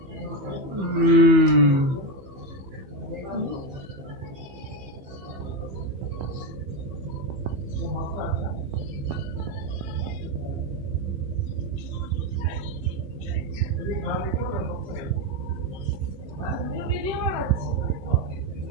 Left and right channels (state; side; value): late; left; 15 ms